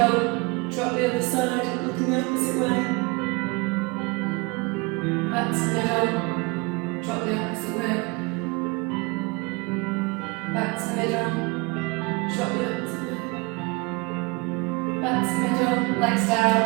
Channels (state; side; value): quieter; left; 27.3 dB